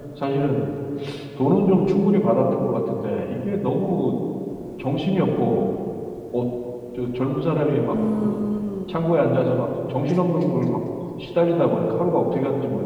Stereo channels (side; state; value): both; identical; correlation 1.00